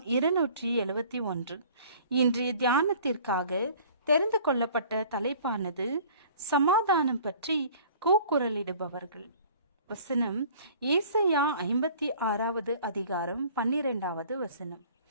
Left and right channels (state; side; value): inverted; both; correlation -0.49